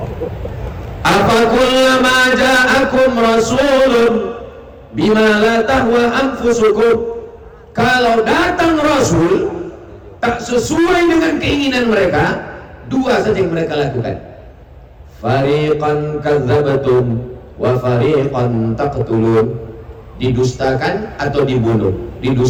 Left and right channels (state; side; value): identical; both; correlation 1.00